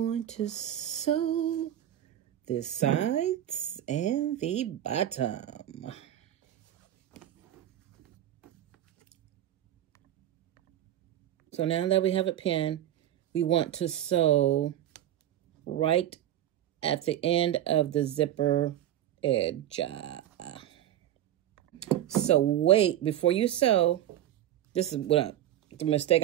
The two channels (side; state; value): left; quieter; 12.0 dB